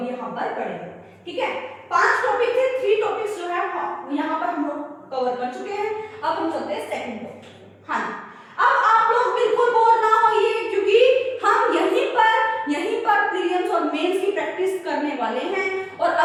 यहाँ पर पढ़ेंगे। ठीक है, 5 टॉपिक थे, 3 टॉपिक्स जो है यहाँ पर हम लोग कवर कर चुके हैं। अब हम चलते हैं सेकंड टॉपिक। हाँ, अब आप लोग बिल्कुल बोर ना होइए क्योंकि हम यहीं पर प्रीलिम्स और मेंस की प्रैक्टिस करने वाले हैं। और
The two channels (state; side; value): identical; both; correlation 1.00